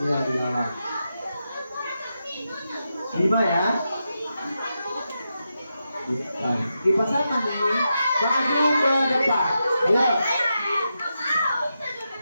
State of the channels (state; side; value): inverted; both; correlation -0.87